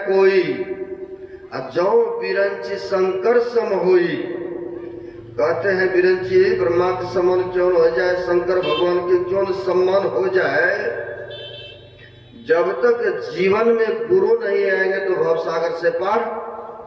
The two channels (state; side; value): identical; both; correlation 1.00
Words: कोई, जौ बिरंची शंकर सम होई। कहते हैं बिरंची ब्रह्मा के समान क्यों हो जाए, शंकर भगवान के क्यों सम्मान हो जाए। जब तक जीवन में गुरु नहीं आएंगे तो भवसागर से पार